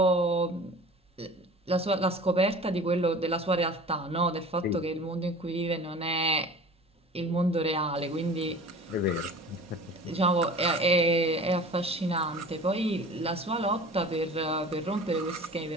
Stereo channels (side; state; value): both; normal; correlation 0.42